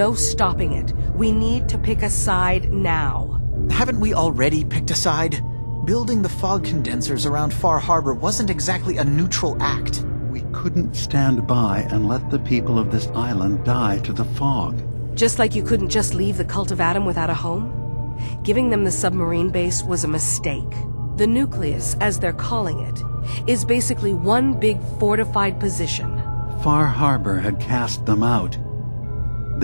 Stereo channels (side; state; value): both; inverted; correlation -1.00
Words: stopping it. We need to pick a side now. Haven't we already picked a side? Building the fog condensers around Far Harbor wasn't exactly a neutral act. We couldn't stand by and let the people of this island die to the fog. Just like you couldn't just leave the Cult of Adam without a home? Giving them the submarine base was a mistake. The nucleus, as they're calling it, is basically one big fortified position. Far Harbor had cast them out.